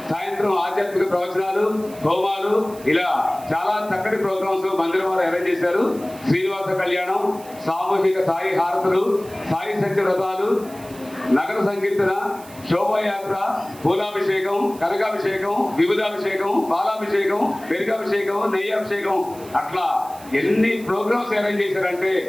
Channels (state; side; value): noise; right; hiss, 20 dB below the sound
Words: సాయంత్రం ఆధ్యాత్మిక ప్రవచనాలు, హోమాలు, ఇలా చాలా చక్కటి ప్రోగ్రామ్స్ మందిరం వారు అరేంజ్ చేశారు. శ్రీనివాస కళ్యాణం, సామూహిక సాయి హారతులు, సాయి సత్య వ్రతాలు, నగర సంకీర్తన, శోభాయాత్ర, పూలాభిషేకం, కనకాభిషేకం, విభుదాభిషేకం, పాలాభిషేకం, పెరుగాభిషేకం, నెయ్యాభిషేకం, అట్లా ఎన్ని ప్రోగ్రామ్స్ అరేంజ్ చేశారంటే